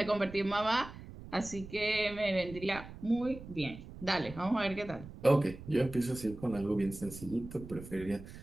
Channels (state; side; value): noise; right; rumble, 14 dB below the sound